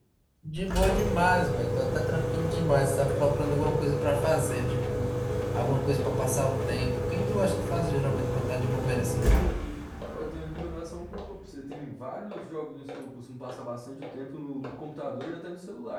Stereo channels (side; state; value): both; identical; correlation 1.00